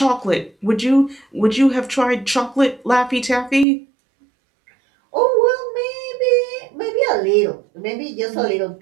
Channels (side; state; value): left; drops out; at 3.7 s